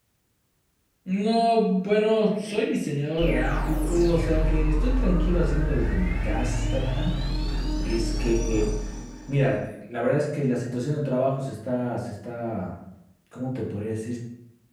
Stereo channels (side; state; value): both; identical; correlation 1.00